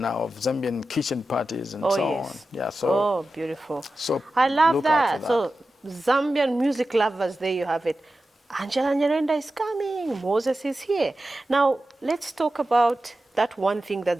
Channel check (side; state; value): both; normal; correlation 0.93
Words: now of Zambian kitchen parties and so on. Yeah. So beautiful. So I love look out for that. So Zambian music lovers, there you have it. Angela Nyirenda is coming. Moses is here. Now, let's talk about that one thing